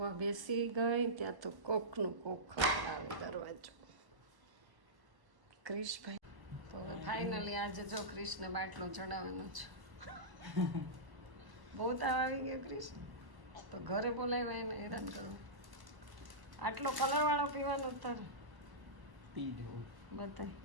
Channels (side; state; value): left; late; 1.1 ms